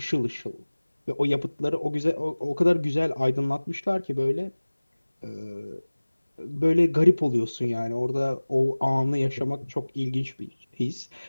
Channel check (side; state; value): both; inverted; correlation -1.00